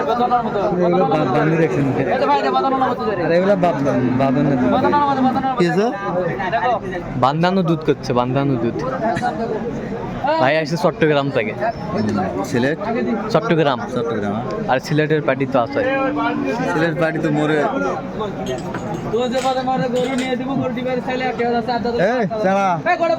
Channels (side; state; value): both; identical; correlation 1.00